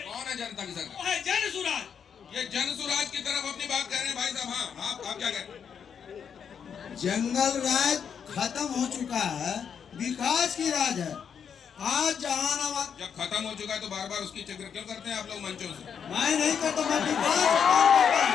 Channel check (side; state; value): right; quieter; 7.3 dB